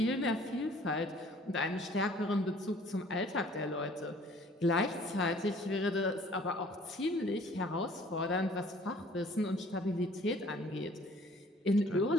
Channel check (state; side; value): normal; both; correlation 0.54